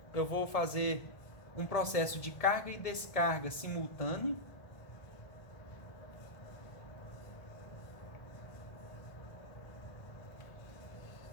eu vou fazer um processo de carga e descarga simultâneo.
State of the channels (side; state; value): right; late; 1.5 ms